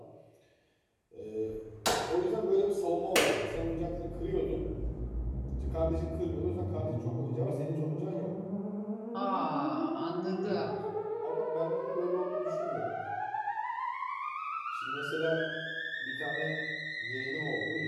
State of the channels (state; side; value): identical; both; correlation 1.00